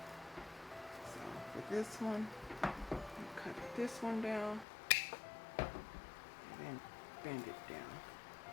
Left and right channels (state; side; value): drops out; right; at 4.7 s